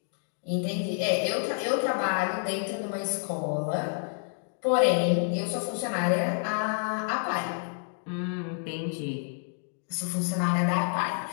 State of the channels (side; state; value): right; silent; digital silence